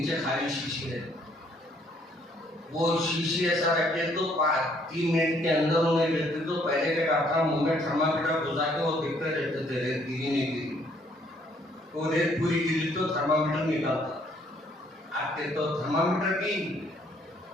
خالی شیشی رہتی، وہ شیشی ایسا رکھتے تو 3 منٹ کے اندر انہیں دیکھتے تو پہلے کے ڈاکٹر منہ میں تھرمامیٹر گھسا کے وہ دیکھتے رہتے تھے ریت گری نہیں گری، وہ ریت پوری گری تو تھرمامیٹر نکالتا۔ آپ کے تو تھرمامیٹر کی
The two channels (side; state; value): both; normal; correlation 0.65